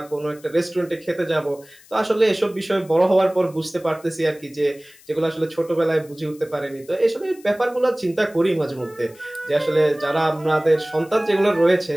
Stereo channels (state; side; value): noise; left; hiss, 25 dB below the sound